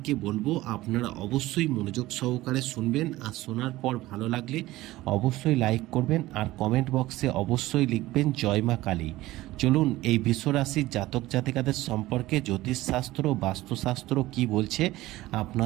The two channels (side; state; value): left; quieter; 17.3 dB